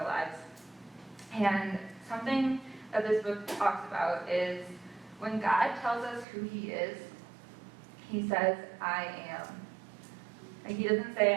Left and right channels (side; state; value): left; drops out; at 6.2 s